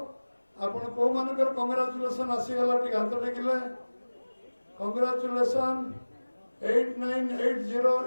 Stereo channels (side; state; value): both; inverted; correlation -1.00